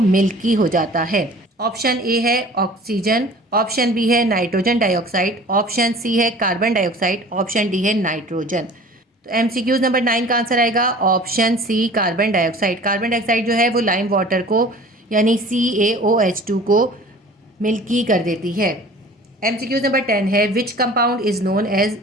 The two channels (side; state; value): both; normal; correlation 0.45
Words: हो जाता है। ऑप्शन ए है ऑक्सीजन, ऑप्शन बी है नाइट्रोजन डाइऑक्साइड, ऑप्शन सी है कार्बन डाइऑक्साइड, ऑप्शन डी है नाइट्रोजन। तो एमसीक्यूज नंबर 9 का आंसर आएगा option C carbon dioxide. Carbon dioxide जो है वो लाइम वाटर को यानी CaOH2 को मिल्की कर देती है। एमसीक्यूज नंबर 10 है which compound is known as